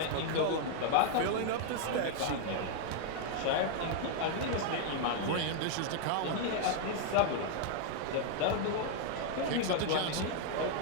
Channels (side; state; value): both; different; correlation 0.00